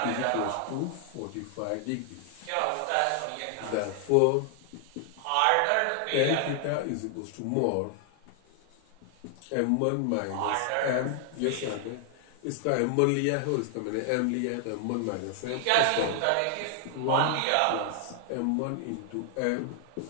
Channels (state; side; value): different; both; correlation 0.00